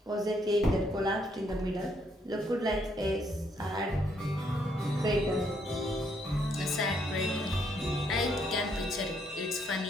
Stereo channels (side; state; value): both; normal; correlation 0.72